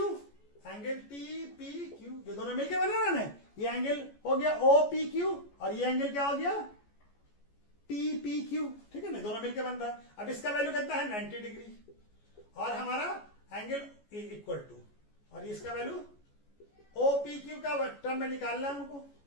angle TPQ, ये दोनों मिलकर बना रहा है, ये एंगल हो गया OPQ और ये एंगल क्या हो गया TPQ, ठीक है ना, दोनों मिलकर बन रहा है। अब इसका वैल्यू कितना है, 90 डिग्री, और हमारा एंगल इक्वल टू, और इसका वैल्यू OPQ का टर्म में निकालना है हमको,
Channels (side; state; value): right; late; 14 ms